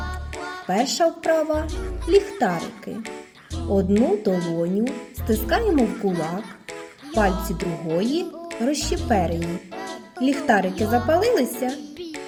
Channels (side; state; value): both; identical; correlation 1.00